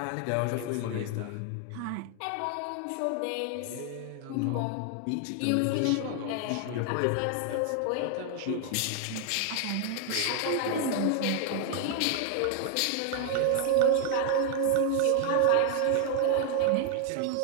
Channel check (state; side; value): different; both; correlation 0.00